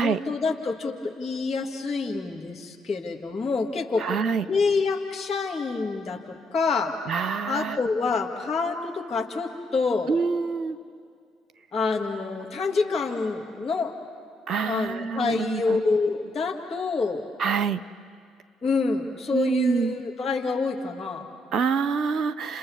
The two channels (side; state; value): both; normal; correlation 0.75